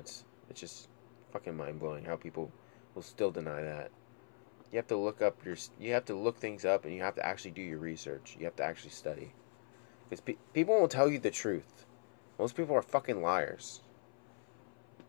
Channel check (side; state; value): right; silent; 51 dB below the other